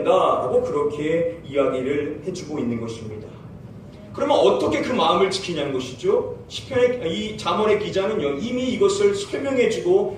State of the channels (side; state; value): both; identical; correlation 1.00